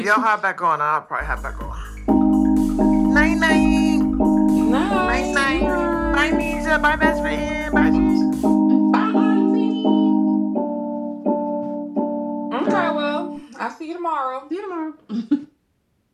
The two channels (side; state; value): both; identical; correlation 1.00